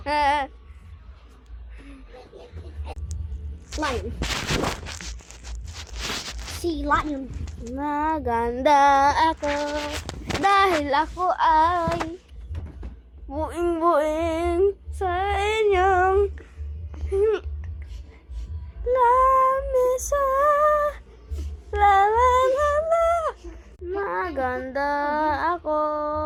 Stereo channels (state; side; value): identical; both; correlation 1.00